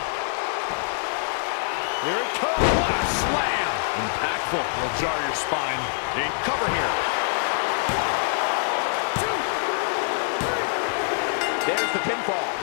Here it comes. What a slam. Impactful. Will jar your spine. In cover here. There's the pinfall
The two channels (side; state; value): right; silent; 62 dB below the other